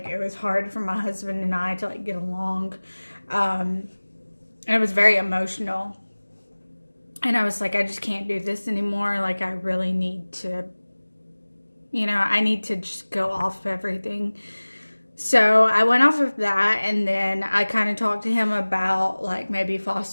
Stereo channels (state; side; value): inverted; both; correlation -1.00